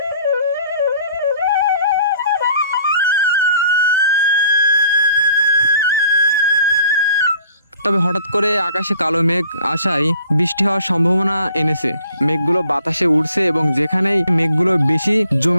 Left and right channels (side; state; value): both; inverted; correlation -0.55